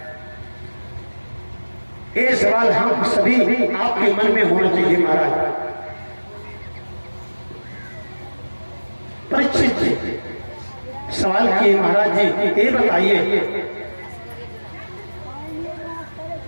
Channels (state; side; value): inverted; both; correlation -1.00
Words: ये सवाल हम सभी आपके मन में होना चाहिए महाराज। परीक्षित जी सवाल किए, महाराज जी ये बताइए